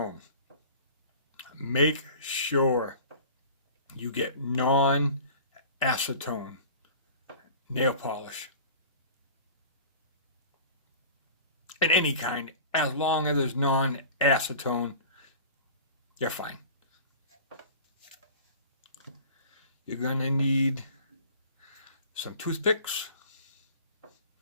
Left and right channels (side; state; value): both; inverted; correlation -0.41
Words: Make sure you get non-acetone nail polish. In any kind, as long as there's non-acetone, you're fine. You're going to need some toothpicks